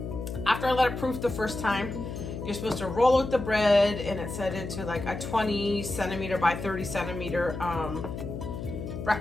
after I let it proof the first time, you're supposed to roll out the bread, and it set into like a 20 centimeter by 30 centimeter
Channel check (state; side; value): noise; left; hum, 7 dB below the sound